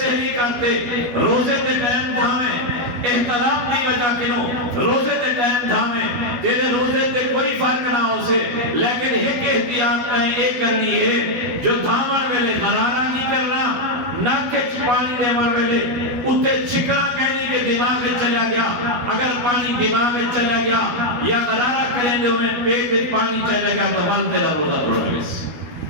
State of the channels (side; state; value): left; late; 12 ms